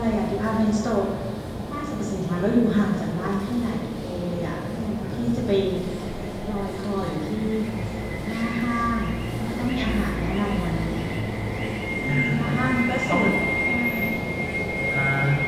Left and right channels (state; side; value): identical; both; correlation 1.00